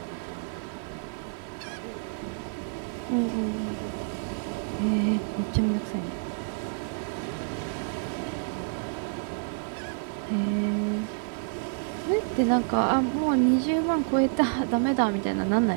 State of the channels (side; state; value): left; silent; 59 dB below the other